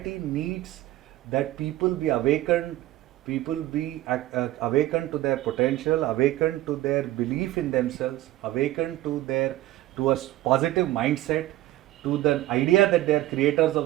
needs that people be awakened, people be awakened to their potential, awakened to their belief in themselves, awakened to their to a positive mindset, to the idea that they are creators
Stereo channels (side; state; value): left; quieter; 15.8 dB